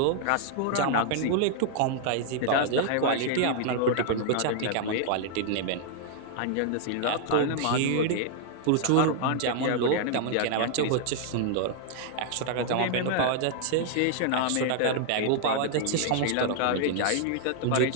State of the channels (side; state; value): both; different; correlation -0.01